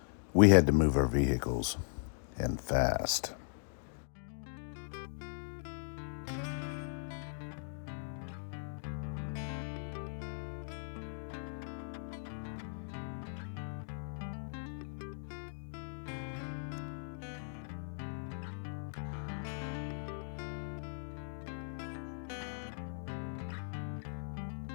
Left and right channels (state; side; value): silent; right; digital silence